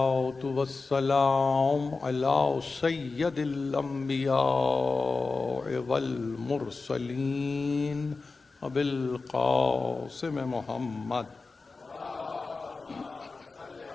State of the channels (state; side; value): quieter; right; 4.0 dB